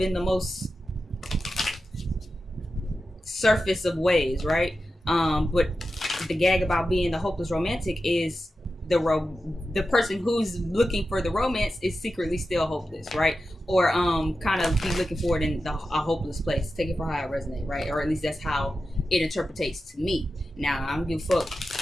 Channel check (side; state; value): both; normal; correlation 0.92